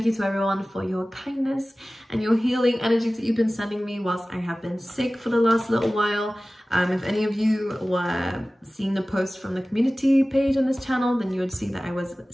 you to everyone for your kindness and your healing energies that you've been sending me whilst I have been sick for the last little while. If any of you were seeing the post from the community page on this channel, then you would see that I was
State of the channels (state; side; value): normal; both; correlation 0.97